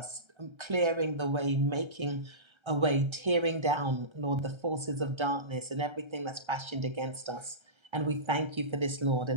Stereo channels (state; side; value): late; left; 1.3 ms